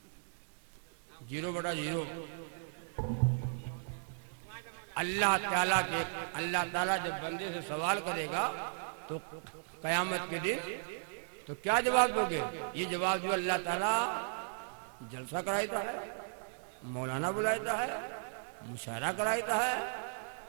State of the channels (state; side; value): silent; left; digital silence